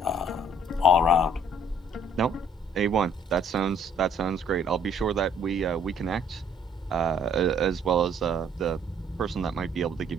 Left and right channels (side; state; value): both; normal; correlation 0.61